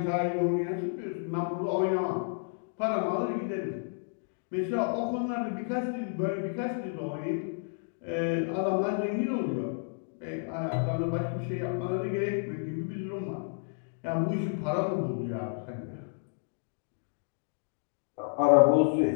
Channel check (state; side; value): silent; right; digital silence